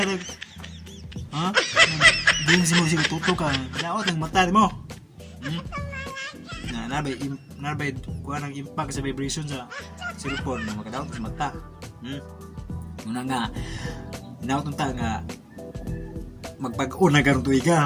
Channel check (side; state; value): both; identical; correlation 1.00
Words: di mo sige tuto ka daot ang mata mo nabay kuha ng impact sa vibration sa cellphone na makadaot sa mata muna nga inaot ta nga magpag-o na karong tuig